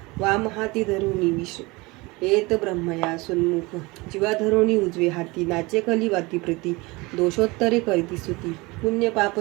वाम हाती धरुनी विष येत ब्रह्मया सुन्मुख जीवा धरोणी उजवे हाती नाचे कली वाती प्रती दोषोत्तरे करीती स्तुती पुण्य पाप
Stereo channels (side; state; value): left; quieter; 24.0 dB